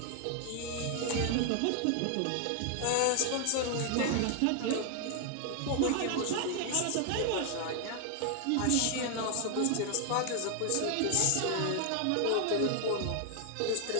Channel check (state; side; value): different; both; correlation 0.00